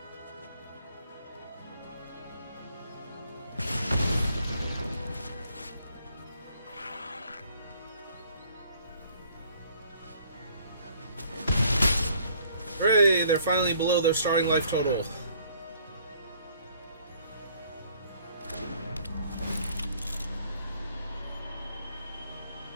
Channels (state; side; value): inverted; both; correlation -0.60